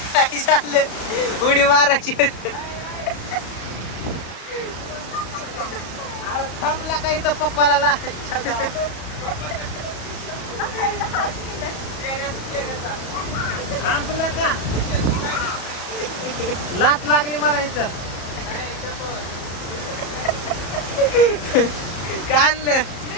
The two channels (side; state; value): right; late; 34 ms